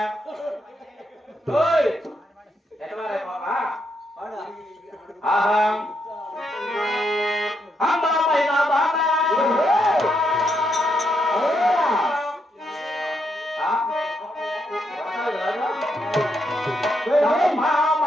hey, etware papa, aham. Hamba maina bana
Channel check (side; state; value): both; normal; correlation 0.79